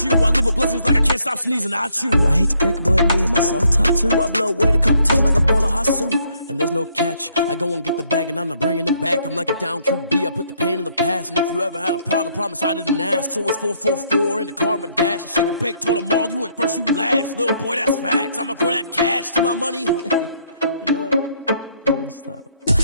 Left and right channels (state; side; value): inverted; both; correlation -0.69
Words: you. I live with blessings like I can't stop sneezing, not you. I hate to break it, but me and myself top two. I blow away the competition like a bowl of hot soup. And there's no catch. I go and get the bag and I'm not bringing it back. I'm like a down QB, I put the pain in the past. And if you ever had a problem, promise I didn't ask. So it's 444 in the car, my dash. I shake a big, told them all, you went first, you last. Little boy, that's facts. I'ma grow that cash to my money. You know what? Let me stop.